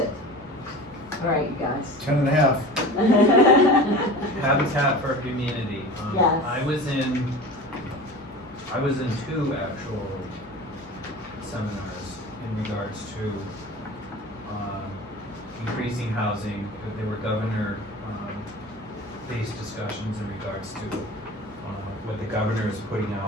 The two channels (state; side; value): normal; both; correlation 0.35